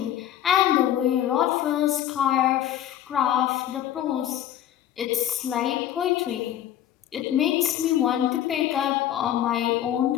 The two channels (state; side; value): quieter; right; 11.5 dB